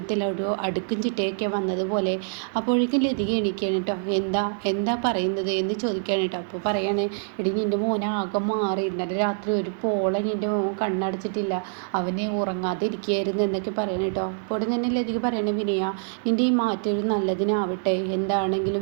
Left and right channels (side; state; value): left; silent; 61 dB below the other